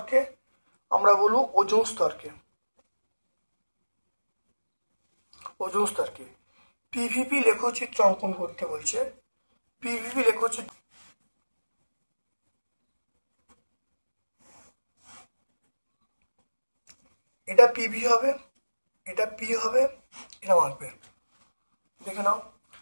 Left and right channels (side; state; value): both; inverted; correlation -1.00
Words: আমরা বলবো ওজোন স্তরকে। PVP লেখচিত্র অঙ্কন করতে বলছে। PVP লেখচিত্র এটা PV হবে, এটা P হবে, এটা আঁকবে, দেখে নাও।